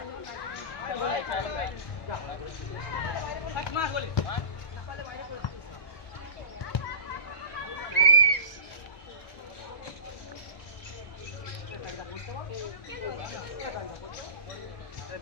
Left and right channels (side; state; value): right; late; 1.5 ms